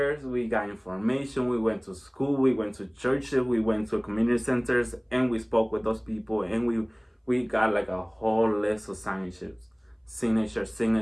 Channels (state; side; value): identical; both; correlation 1.00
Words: we got information, we went to school, we went to churches, we went to community centers, and we spoke with those people, and we got like a whole list of signature,